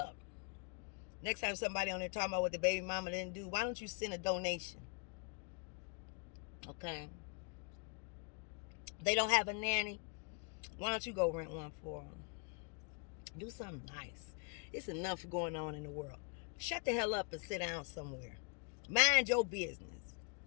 Next time somebody on there talking about what the baby mama didn't do, why don't you send a donation? Okay. They don't have a nanny. Why don't you go rent one for them? Do something nice. It's enough going on in the world. Shut the hell up and sit down somewhere. Mind your business.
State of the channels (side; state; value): right; quieter; 36.4 dB